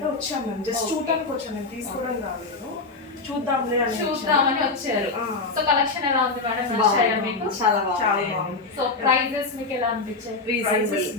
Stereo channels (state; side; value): quieter; right; 3.8 dB